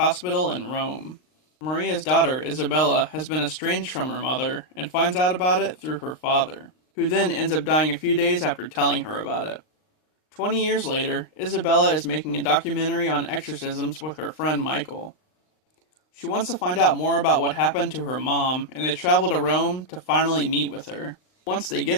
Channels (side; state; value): right; late; 39 ms